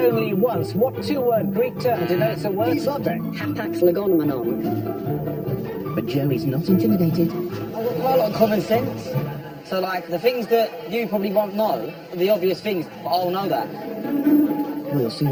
once, what 2-word Greek term denotes a word subject? Hapax legomenon. But Joey's not intimidated. I've got quite a lot of common sense. So, like, the things that you probably won't know, the obvious things, but I'll know that. We'll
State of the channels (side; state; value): both; identical; correlation 1.00